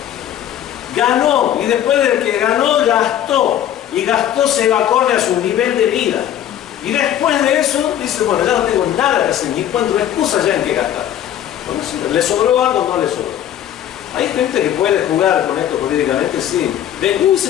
Ganó y después de que ganó, gastó. Y gastó se va acorde a su nivel de vida. Y después de eso, dice, bueno, ya no tengo nada que hacer, ni encuentro excusa ya en qué gastar. Bueno, sí, ¿le sobró algo o no le sobró? Hay gente que puede jugar con esto políticamente, sí. Se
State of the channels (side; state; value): right; quieter; 11.0 dB